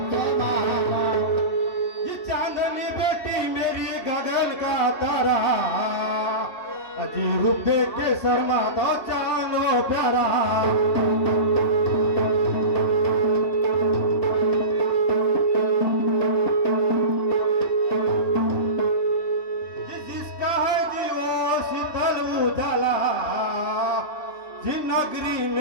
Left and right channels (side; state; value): right; late; 2.7 ms